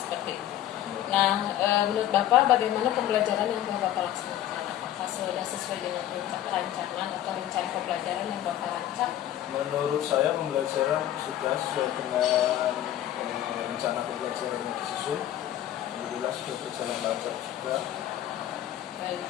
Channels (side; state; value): right; quieter; 12.4 dB